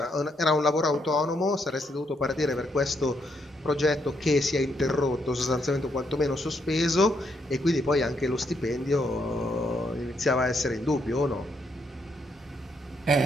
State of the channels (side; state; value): both; normal; correlation 0.76